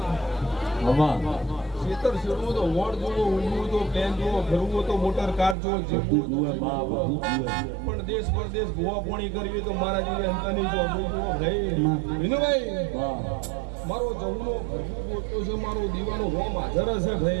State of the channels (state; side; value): drops out; left; at 5.6 s